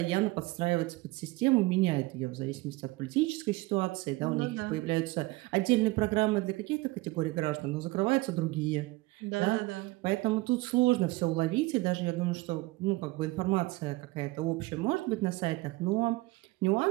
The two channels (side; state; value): left; quieter; 21.1 dB